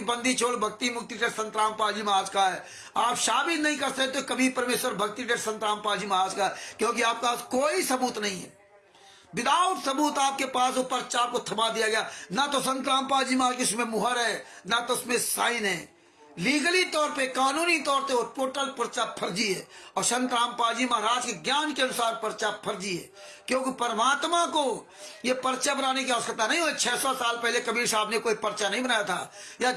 बंदी छोड़ भक्ति मुक्ति ट्रस्ट संत रामपाल जी महाराज का है। आप साबित नहीं कर सकते कभी परमेश्वर भक्ति ट्रस्ट संत रामपाल जी महाराज का, क्योंकि आपके पास कोई सबूत नहीं है। विदाउट सबूत आपके पास वो पर्चा आपको थमा दिया गया। ना तो संत रामपाल जी महाराज की उसमें मुहर है, ना तो उसमें साइन है। लीगली तौर पे, कानूनी तौर पे वो टोटल पर्चा फर्जी है। और संत रामपाल जी महाराज के ज्ञान के अनुसार पर्चा फर्जी है, क्योंकि परमात्मा को ये पर्चा बनाने की आवश्यकता नहीं हुई। 600 साल पहले कबीर साहब ने कोई पर्चा नहीं बनाया था। या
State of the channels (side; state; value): both; identical; correlation 1.00